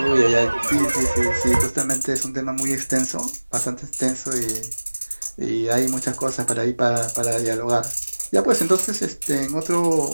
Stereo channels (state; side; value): inverted; both; correlation -1.00